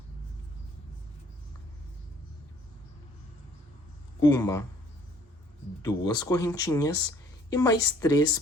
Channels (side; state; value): both; normal; correlation 0.59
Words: 1, 2 correntinhas e mais 3